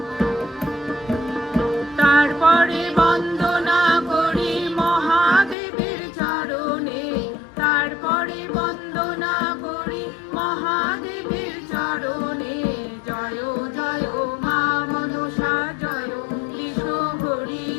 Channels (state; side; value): drops out; right; at 5.6 s